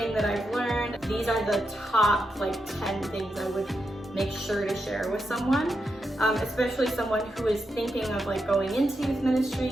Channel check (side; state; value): both; normal; correlation 0.86